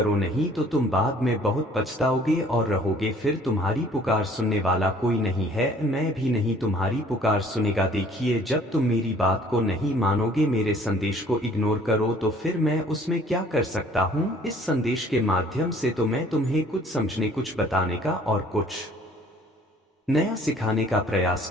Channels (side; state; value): both; normal; correlation 0.56